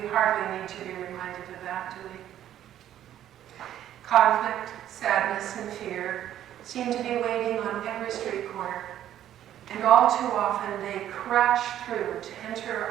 hardly need to be reminded of that, do we? Conflict, sadness, and fear seem to be waiting on every street corner, and all too often they crash through to enter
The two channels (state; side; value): quieter; left; 11.5 dB